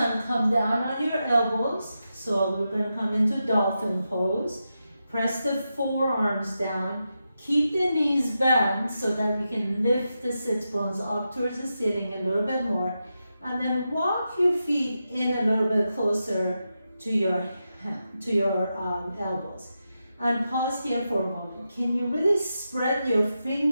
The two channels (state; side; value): inverted; both; correlation -0.88